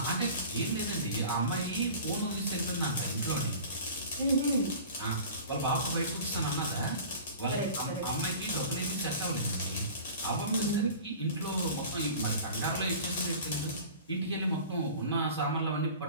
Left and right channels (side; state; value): both; inverted; correlation -0.40